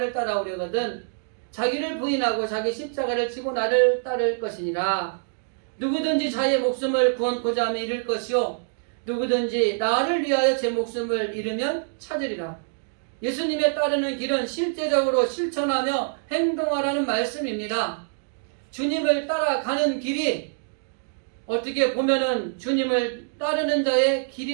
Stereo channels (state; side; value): silent; left; digital silence